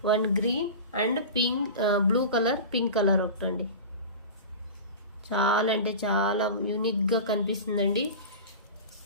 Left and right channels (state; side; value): inverted; both; correlation -0.31